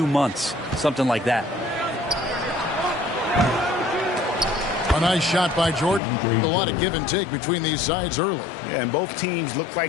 months, something like that. A nice shot by Jordan. A lot of give and take between these sides early. Yeah, and both teams look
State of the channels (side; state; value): right; drops out; at 6.0 s